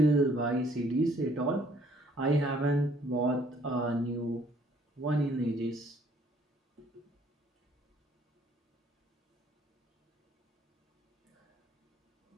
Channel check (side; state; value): both; normal; correlation 0.61